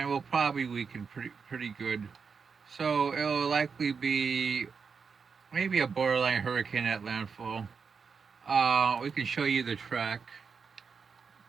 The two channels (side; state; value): left; quieter; 5.7 dB